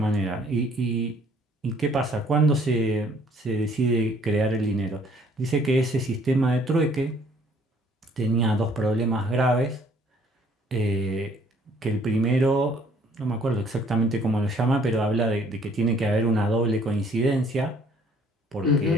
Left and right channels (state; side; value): normal; both; correlation 0.60